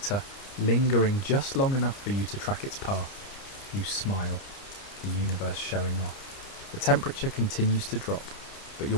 lingering just long enough for you to track its path. You smile, the universe showing off. The temperature continues to drop, but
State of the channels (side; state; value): right; late; 30 ms